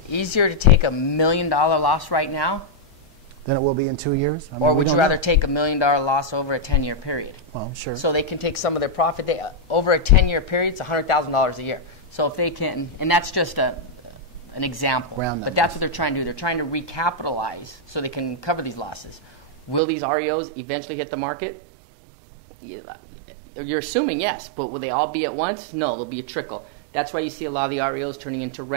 easier to take $1 million loss right now? Than it will be in 2 years? I mean, or would you rather take $1 million loss over a 10-year period? Well, sure. So they can take some of their profit. Over a 10-year period, it's $100,000 a year. So if they can, and that's just an example, but that's what they're trying to do. They're trying to recapitalize so they can cover these losses. Will these REOs eventually hit the market? Yeah, you're assuming yes, but will they all be at once? No, there'll be a trickle. That's why you see a lot of the REOs turning into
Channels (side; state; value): left; drops out; at 19.8 s